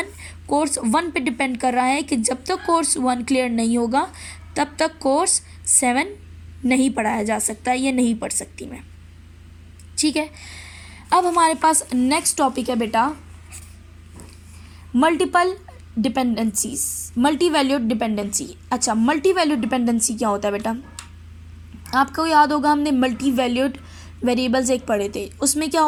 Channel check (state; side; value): identical; both; correlation 1.00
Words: कोर्स 1 पे डिपेंड कर रहा है कि जब तक कोर्स 1 क्लियर नहीं होगा तब तक कोर्स 7 नहीं पढ़ाया जा सकता, ये नहीं पढ़ सकती मैं, ठीक है। अब हमारे पास नेक्स्ट टॉपिक है बेटा multiple dependencies, multi valued dependency. अच्छा, मल्टी वैल्यूड डिपेंडेंसी क्या होता है बेटा? आपको याद होगा हमने मल्टी वैल्यूड वेरिएबल्स एक पढ़े थे। उसमें क्या